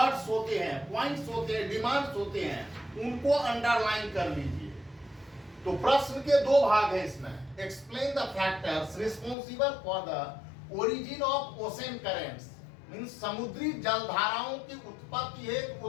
होते हैं, पॉइंट्स होते हैं, डिमांड्स होते हैं, उनको अंडरलाइन कर लीजिए। तो प्रश्न के दो भाग हैं इसमें। Explain the factors responsible for the origin of ocean currents, means समुद्री जलधाराओं की उत्पत्ति हेतु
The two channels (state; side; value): drops out; right; at 9.3 s